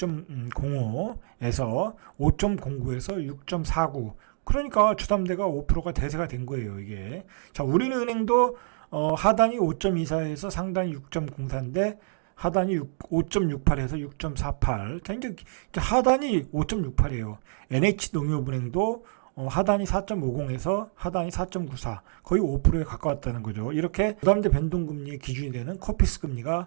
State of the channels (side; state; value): left; silent; digital silence